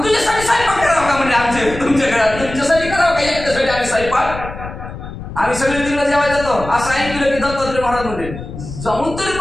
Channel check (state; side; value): noise; left; rumble, 11 dB below the sound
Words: तुझ्यासाठी स्वयंपाक करावं का म्हणजे आमचे तुमच्या घरात तुमच्यासाठी करावं का एकट्यासाठी आम्ही स्वयंपाक आम्ही सगळे तिकडे जेवाय जातो असं ऐकलं की दत्तात्रय महाराज म्हणजे जाऊन तरी